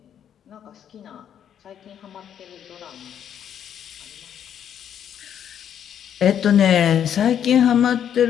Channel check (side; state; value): right; quieter; 9.3 dB